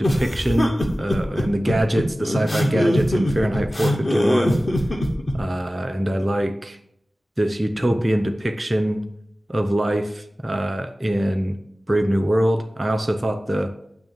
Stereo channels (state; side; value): normal; both; correlation 0.96